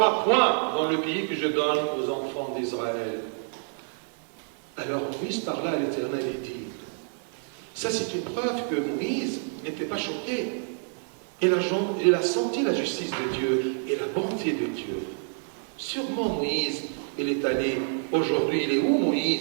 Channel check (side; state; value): left; silent; 60 dB below the other